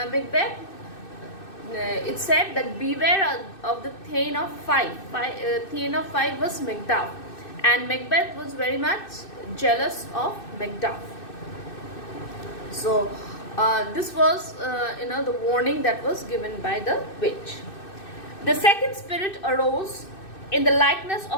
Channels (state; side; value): late; right; 2.6 ms